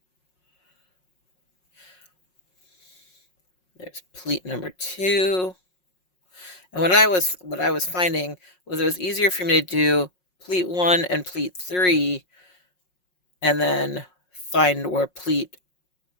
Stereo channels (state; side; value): late; right; 5.5 ms